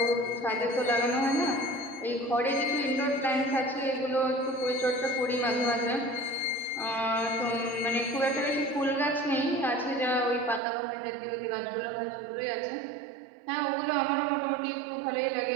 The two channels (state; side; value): drops out; left; at 10.6 s